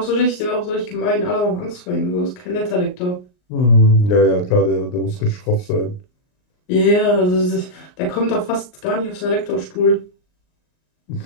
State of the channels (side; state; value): right; late; 39 ms